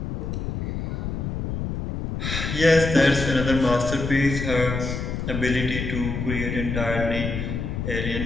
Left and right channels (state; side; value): noise; left; rumble, 3 dB below the sound